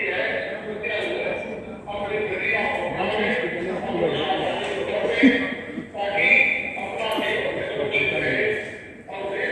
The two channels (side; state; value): both; identical; correlation 1.00